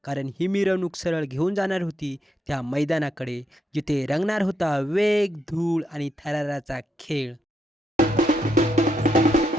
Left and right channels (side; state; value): both; normal; correlation 0.80